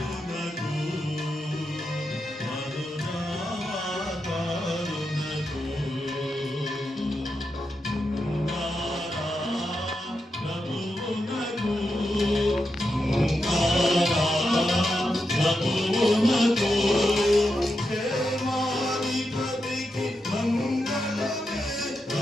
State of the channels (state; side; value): normal; both; correlation 0.86